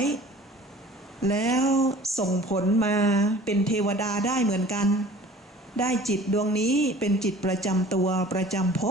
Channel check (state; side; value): normal; both; correlation 0.46